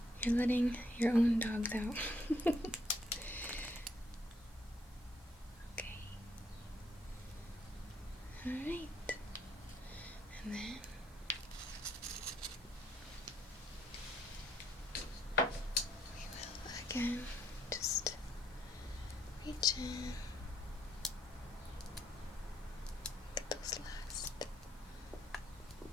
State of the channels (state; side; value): normal; both; correlation 0.70